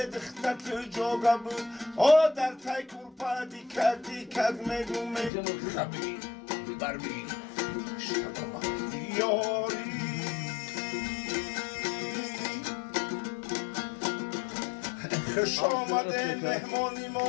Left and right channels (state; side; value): drops out; right; at 5.3 s